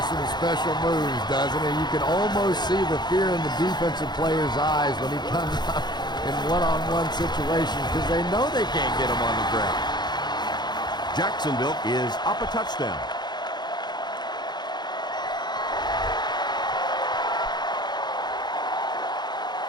some special moves, doesn't he? You can almost see the fear in the defensive player's eyes when he comes up in one-on-one situations because they know they can't get him on the ground. Jacksonville is up a touchdown.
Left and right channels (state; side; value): late; right; 0.21 ms